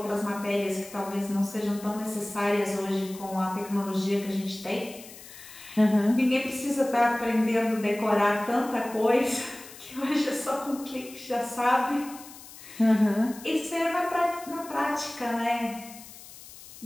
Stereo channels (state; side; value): noise; left; hiss, 17 dB below the sound